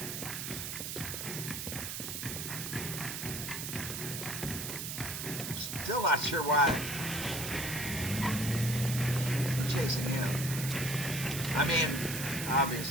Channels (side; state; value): right; noise; hiss, 5 dB below the sound